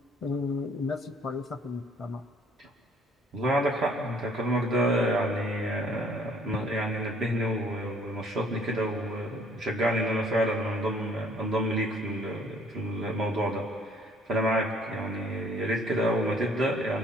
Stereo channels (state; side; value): normal; both; correlation 0.59